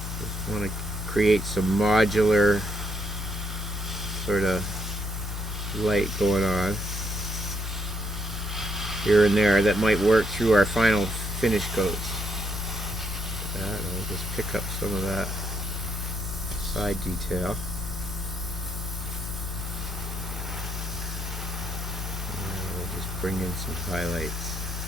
Just want to create some modular sort of light going on here and there that might work through our final finish coats. I'll just pick up some of that side detail. And we'll just bring in some highlights.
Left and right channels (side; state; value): both; normal; correlation 0.75